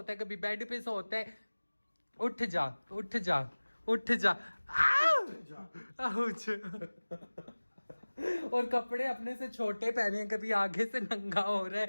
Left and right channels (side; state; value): both; inverted; correlation -1.00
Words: है, कभी बेड पे सोता है। उठ जा, उठ जा, उठ जा। आउच। और कपड़े अपने से छोटे पहने हैं, कभी आगे से नंगा हो रहा